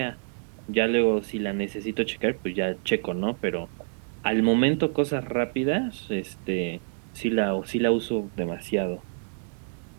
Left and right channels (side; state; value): left; silent; 60 dB below the other